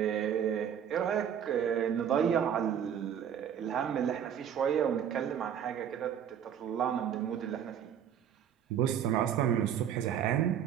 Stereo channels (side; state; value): left; quieter; 8.9 dB